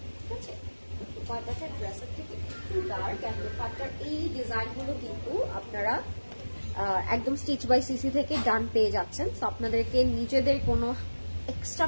ঠিক আছে? দোপাট্টাটা ড্রেসের থেকে একটু ডার্ক, অ্যান্ড দোপাট্টার এই ডিজাইনগুলো কিন্তু আপনারা একদম স্টিচ বাই সিসি থেকে ডান পেয়ে যাচ্ছেন। সো আপনাদেরকে নিজেদের কোনো এক্সট্রা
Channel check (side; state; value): both; inverted; correlation -1.00